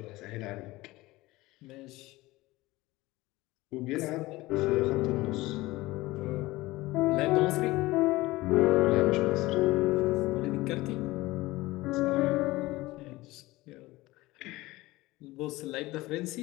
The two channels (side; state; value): right; quieter; 19.5 dB